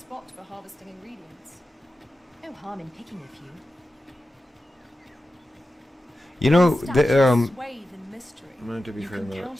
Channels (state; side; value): normal; both; correlation 0.93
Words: for harvesting ingredients. No harm in picking a few. You know, Statues swathed in mystery. to be You fair, can that's count